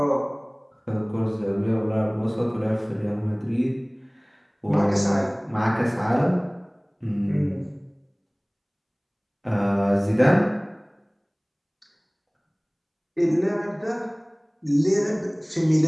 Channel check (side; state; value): both; identical; correlation 1.00